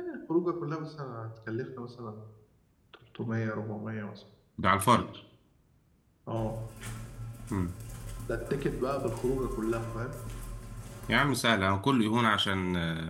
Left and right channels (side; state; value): both; identical; correlation 1.00